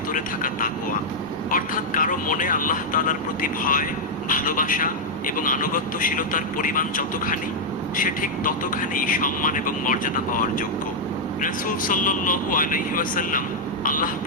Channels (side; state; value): both; normal; correlation -0.04